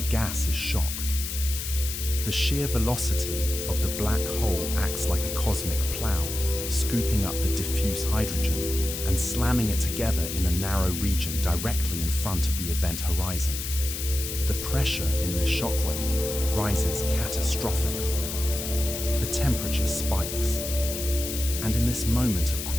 gas is shocked. The sheer velocity of the black hole acts like a cosmic plow, scooping up the diffuse hydrogen and slamming it together in a narrow region directly in front of the event horizon. The pressure in this shockwave rises catastrophically. The temperature spikes. And in this moment of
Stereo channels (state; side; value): noise; left; hiss, 5 dB below the sound